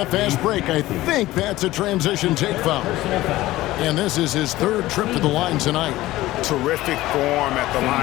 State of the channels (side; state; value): right; quieter; 16.9 dB